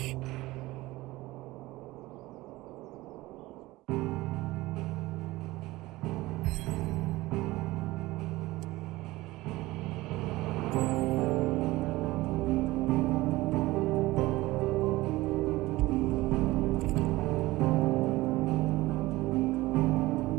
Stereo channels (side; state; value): left; quieter; 19.1 dB